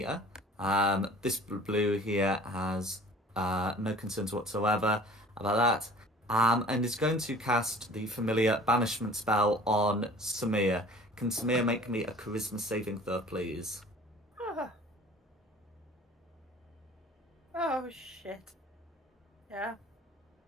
has no concerns whatsoever about that. And is going to cast the familiar banishment spell on Samir. Can Samir make me a charisma saving throw, please? Oh shit. Yeah.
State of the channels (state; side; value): normal; both; correlation 0.47